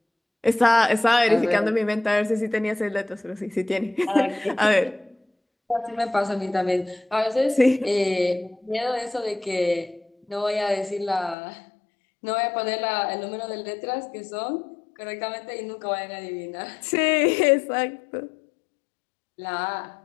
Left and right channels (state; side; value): drops out; right; at 11.4 s